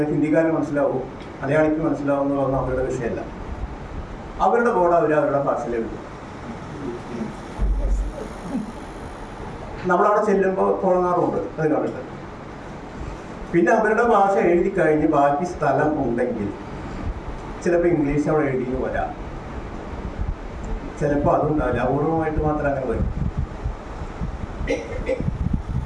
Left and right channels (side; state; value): both; identical; correlation 1.00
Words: ഹിന്ദിക്കാരന് മനസ്സിലാവും, മലയാളിക്ക് മനസ്സിലാവുന്നതൊന്നും അവരുടെ വിഷയമല്ല. അവരുടെ ബോർഡ് അവരുടെ ഭാഷയിലേക്ക്. നമ്മളവിടെ ചെല്ലുമ്പോൾ തുടങ്ങാറുണ്ട് അത് കണ്ടിട്ട്. പിന്നെ അവരുടെ ഭാഷ എഴുതി കഴിഞ്ഞ് ബാക്കി സ്ഥലം ഉണ്ടെങ്കിൽ ചിലപ്പോൾ ഇംഗ്ലീഷ് അവിടെ എഴുതിയെന്ന് വരാം, ചിലപ്പോൾ അതുണ്ടാവില്ല. അപൂർവമായിട്ട് മാത്രം അങ്ങനെ വരും.